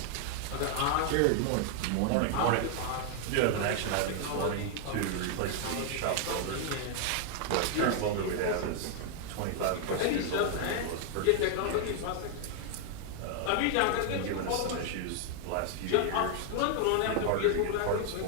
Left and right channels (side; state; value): both; different; correlation 0.00